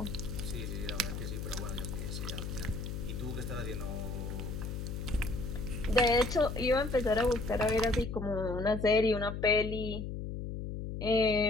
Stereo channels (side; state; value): left; noise; hum, 5 dB below the sound